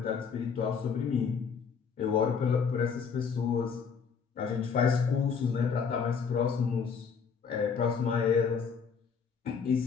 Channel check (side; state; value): right; quieter; 6.1 dB